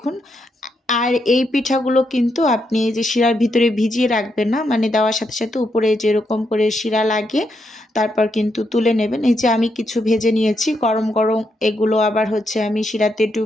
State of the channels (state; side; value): normal; both; correlation 0.80